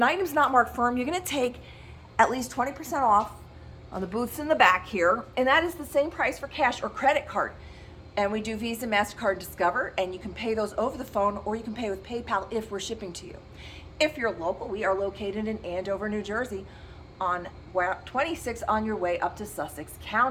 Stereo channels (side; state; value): both; identical; correlation 1.00